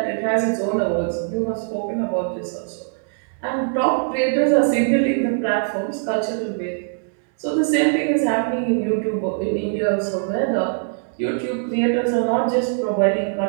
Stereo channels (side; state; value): left; silent; 62 dB below the other